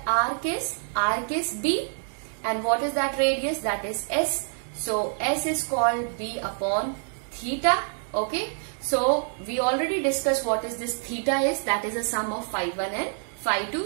arc is? Arc is B, and what is that radius? That is S. So S is called B upon theta. Okay, so we already discussed what is this theta is, that is a sum of phi 1 and phi 2.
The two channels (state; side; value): silent; left; 60 dB below the other